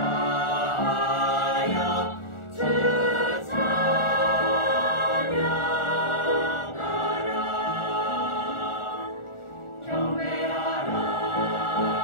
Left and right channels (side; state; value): right; late; 1.4 ms